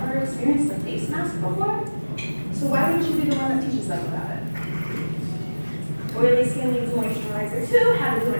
experienced a face mask before? So why wouldn't you be the one that teaches them about it? Oily skin needs moisturizer too. How to do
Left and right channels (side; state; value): both; inverted; correlation -1.00